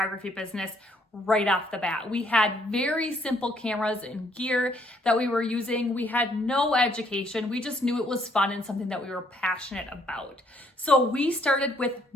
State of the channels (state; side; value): normal; both; correlation 0.67